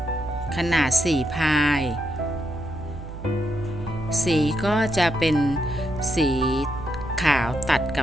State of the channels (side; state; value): right; noise; hum, 12 dB below the sound